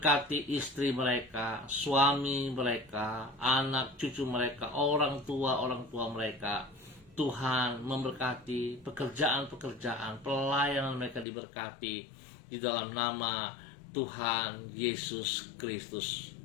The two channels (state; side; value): drops out; right; at 11.2 s